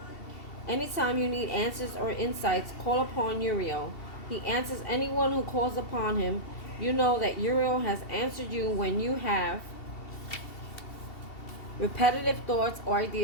you need answers or insights, call upon Uriel. He answers anyone who calls upon him. You know that Uriel has answered you when you have repetitive thoughts or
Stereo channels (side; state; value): right; late; 2.7 ms